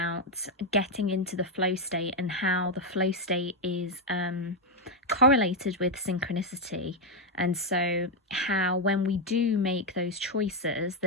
getting into the flow state and how the flow state is correlated with synchronicity. And so how when we do make those choices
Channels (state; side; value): normal; both; correlation 0.03